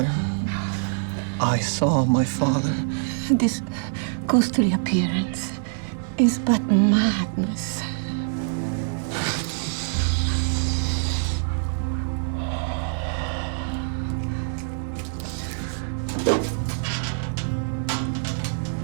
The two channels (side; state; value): left; silent; digital silence